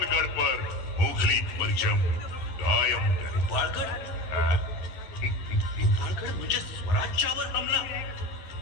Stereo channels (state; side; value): late; right; 11 ms